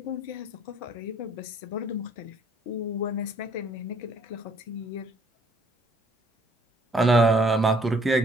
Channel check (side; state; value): both; normal; correlation 0.63